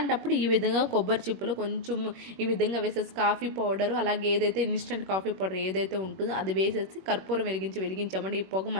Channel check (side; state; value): left; late; 21 ms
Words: ఈ విధంగా కొబ్బరి చిప్పులు కొంచెం ఈ విధంగా వేసేసి కాఫీ పౌడర్ అలాగే ఏదైతే ఇన్స్టెంట్ కాఫీ పౌడర్ ఏదైతే ఉంటుందో అది వేసేసి కర్పూరం వెలిగించామంటే ఈ పొగ